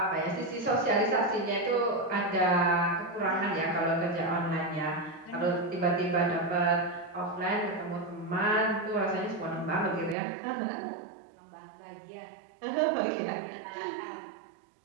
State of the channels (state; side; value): drops out; left; at 10.2 s